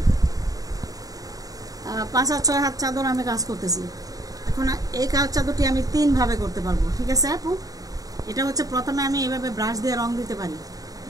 5 হাত 6 হাত চাদর আমি কাজ করতেছি। এখন এই কাজ চাদরটি আমি 3 ভাবে করতে পারবো, ঠিক আছে আপু? এটা হচ্ছে প্রথমে আমি এইভাবে ব্রাশ দিয়ে রং দিতে পারি,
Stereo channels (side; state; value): left; late; 0.18 ms